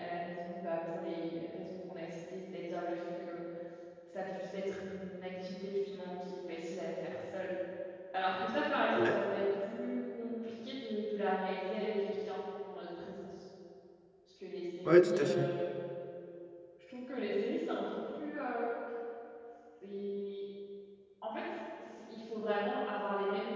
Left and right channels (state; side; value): identical; both; correlation 1.00